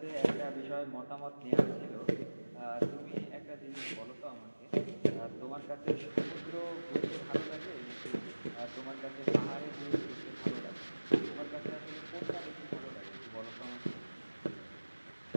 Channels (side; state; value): both; inverted; correlation -1.00